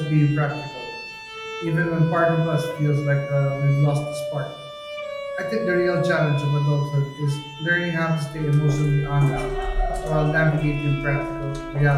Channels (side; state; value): both; identical; correlation 1.00